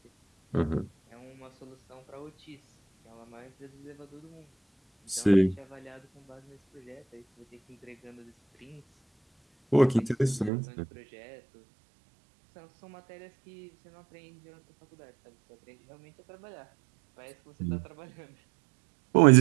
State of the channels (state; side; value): drops out; left; at 10.5 s